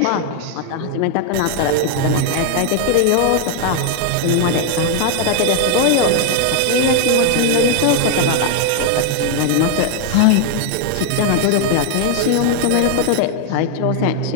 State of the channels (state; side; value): different; both; correlation 0.00